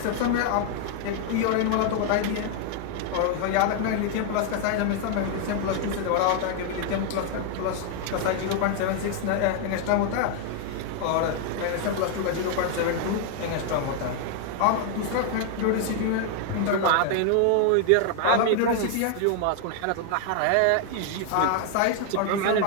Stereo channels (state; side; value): different; both; correlation 0.00